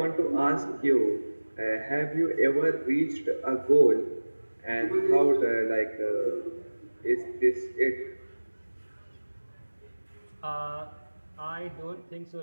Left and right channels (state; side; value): inverted; both; correlation -1.00